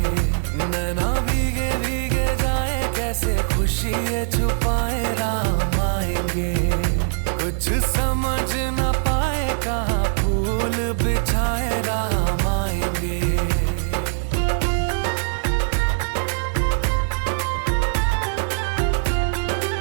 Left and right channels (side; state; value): left; silent; digital silence